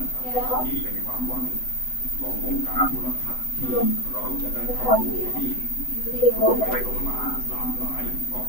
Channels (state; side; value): late; right; 7.9 ms